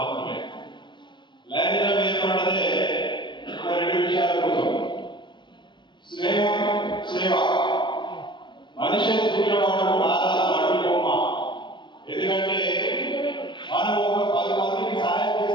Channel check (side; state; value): right; late; 0.23 ms